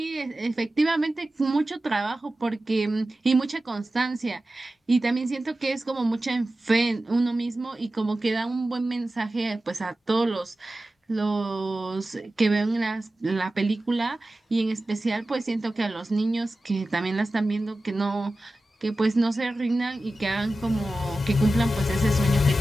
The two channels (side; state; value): both; normal; correlation 0.95